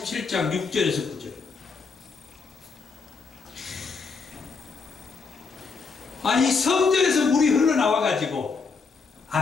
6절에서 9절. 아니 성전에서 물이 흘러나와 가지고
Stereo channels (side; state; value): right; quieter; 4.8 dB